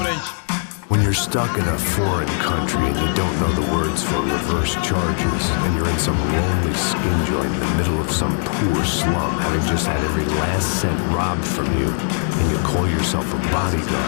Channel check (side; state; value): right; silent; digital silence